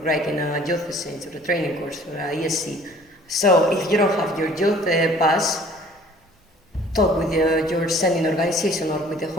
writing a youth exchange or a training course or a ESC. So if you don't have your youth pass, talk with your sending organization or with the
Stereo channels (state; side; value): normal; both; correlation 0.53